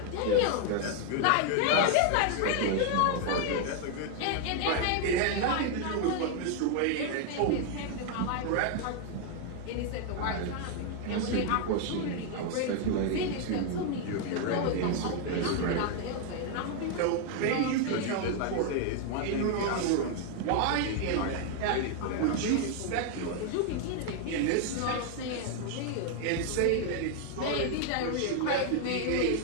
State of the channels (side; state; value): both; different; correlation 0.00